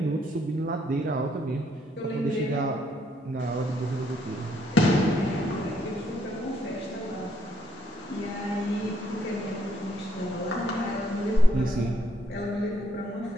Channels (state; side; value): normal; both; correlation 0.71